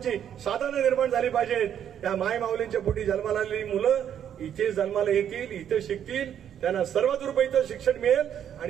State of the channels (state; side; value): quieter; left; 9.5 dB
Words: साधनं निर्माण झाली पाहिजेत. त्या माय माऊलींच्या पोटी जन्माला आलेली मुलं इथे जन्माला येतील, इथे शिकतील, त्यांना सर्वतोपरी इथं शिक्षण मिळेल